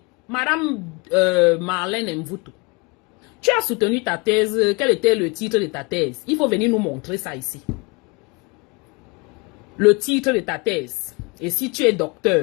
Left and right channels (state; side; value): quieter; right; 28.4 dB